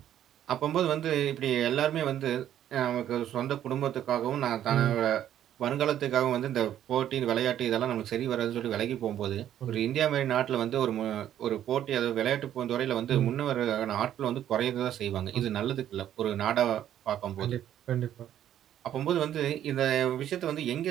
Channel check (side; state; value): left; quieter; 11.1 dB